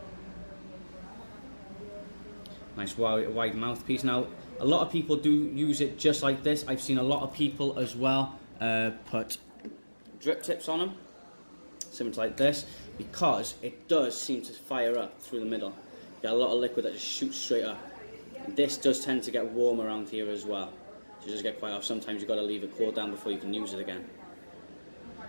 Nice wide mouthpiece. Now, a lot of people do use it just like this. I've seen a lot of people as well put drip tips on them, similar to like this, because it does seem to fire up through the middle. You get a lot of liquid that just shoots straight up. And this does tend to get warm around here as well, so it does get quite off. Sometimes you've got to leave it cool down before you can use it again.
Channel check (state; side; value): inverted; both; correlation -1.00